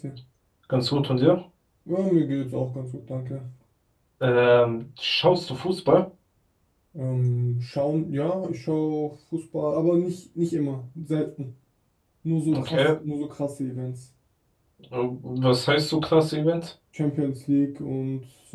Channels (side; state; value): both; identical; correlation 1.00